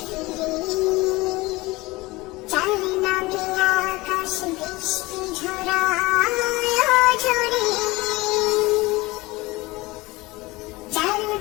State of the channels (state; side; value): quieter; right; 21.4 dB